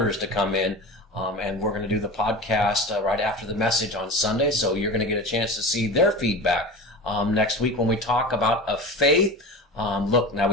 to come in, and we're going to do the podcast right after the message on Sunday, so you're going to get a chance to see their feedback next week when we talk about a faith. Look, now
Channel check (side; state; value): both; normal; correlation 0.32